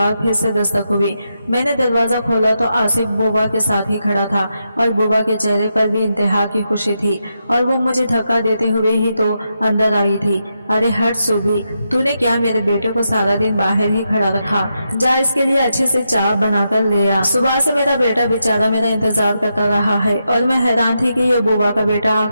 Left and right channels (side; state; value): both; inverted; correlation -0.85